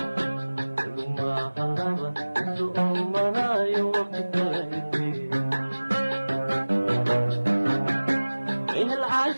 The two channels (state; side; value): inverted; both; correlation -1.00